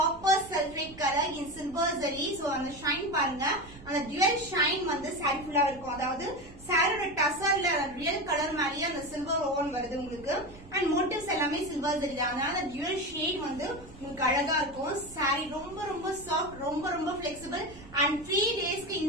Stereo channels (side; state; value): right; noise; rumble, 18 dB below the sound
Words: சல்ஃபேட் கலர் இன் சில்வர் ஜரி. சோ அந்த ஷைன் பாருங்க, அந்த டுவல் ஷைன் வந்து சாரி ஃபுல்லா இருக்கும். அதாவது சாரியோட டசர்ல ரியல் கலர் மாதிரியே அந்த சில்வர் ஓவன் வருது உங்களுக்கு. அண்ட் மோட்டிவ்ஸ் எல்லாமே சில்வர் ஜரி தான். அதனால டுவல் ஷேட் வந்து உங்களுக்கு அழகா இருக்கும். சாரி ரொம்ப ரொம்ப சாஃப்ட், ரொம்ப ரொம்ப பிளெக்சிபிள். அண்ட் 3 டேஸ்க்கு